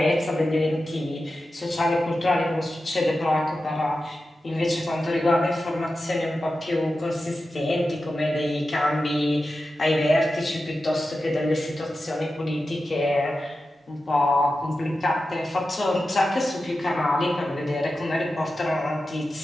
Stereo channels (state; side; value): normal; both; correlation 0.92